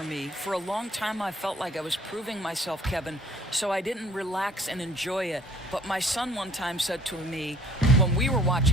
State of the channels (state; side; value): normal; both; correlation 0.54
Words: me? For a long time, I felt like I was proving myself, Kevin, so I didn't relax and enjoy it. But my son one time said to me, when we were